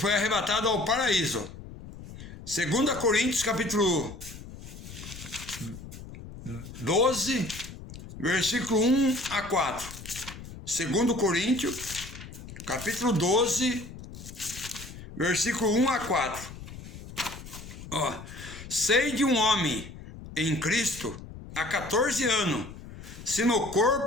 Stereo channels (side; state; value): left; noise; rumble, 14 dB below the sound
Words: arrebatado ao paraíso. 2 Coríntios, capítulo 12, versículo 1 a 4. 2 Coríntios, capítulo 12, versículo 1 a 4. Sei de um homem em Cristo há 14 anos, se no